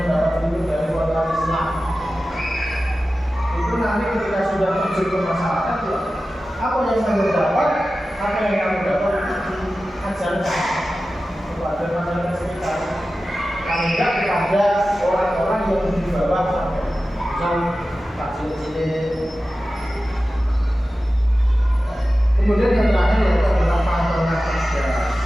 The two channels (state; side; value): normal; both; correlation 0.94